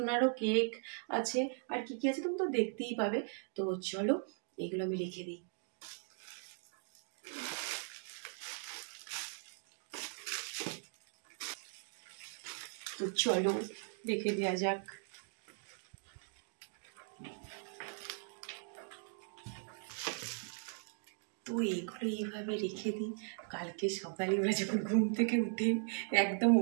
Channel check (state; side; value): silent; left; 52 dB below the other